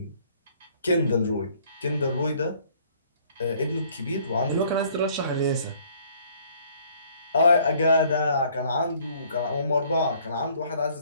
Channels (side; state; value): both; inverted; correlation -0.60